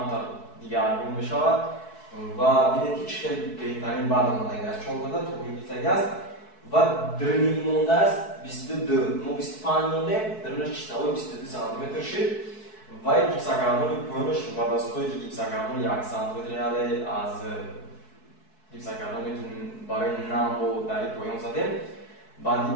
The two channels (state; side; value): late; right; 4.6 ms